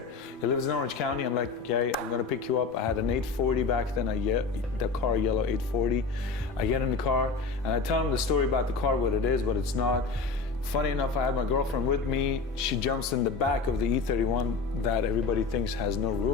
He lives in Orange County. I'm like, Gary, I'm going to pick you up. I had an 840 back then, the car yellow 840. I get in the car and I tell him the story about the car, what it is, what it's not. Funny enough, I had my girlfriend with me. She jumps in the back of the E31 that everybody thinks has no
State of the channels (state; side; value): quieter; right; 4.4 dB